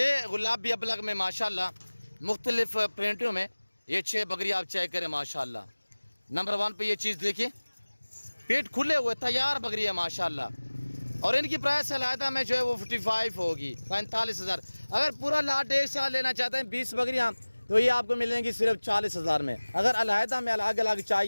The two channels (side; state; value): both; inverted; correlation -1.00